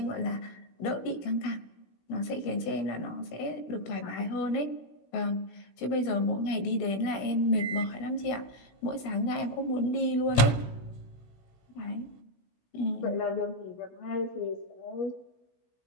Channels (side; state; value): right; late; 16 ms